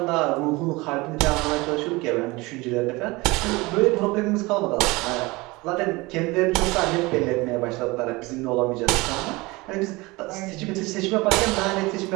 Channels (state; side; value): quieter; left; 23.0 dB